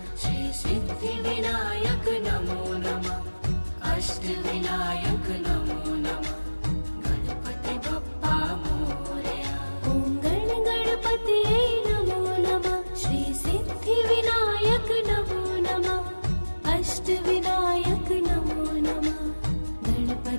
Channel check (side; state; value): both; inverted; correlation -1.00